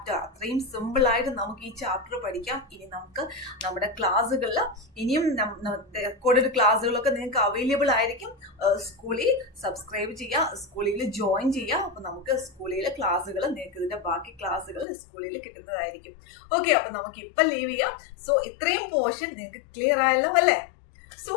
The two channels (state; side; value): drops out; right; at 14.9 s